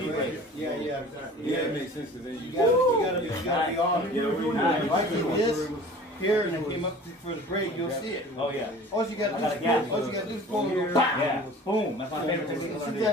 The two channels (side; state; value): both; normal; correlation 0.43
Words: Yeah, Yeah, it makes sense because then you gotta be on them. If I do this here and I came up for the break, you'll see it. Oh yeah. All you gotta do is pull and go, Yeah. Boom. That's my favorite technique. see